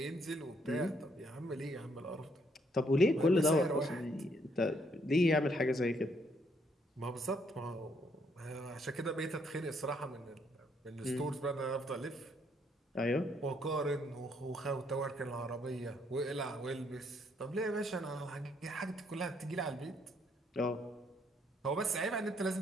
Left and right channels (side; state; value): both; normal; correlation 0.70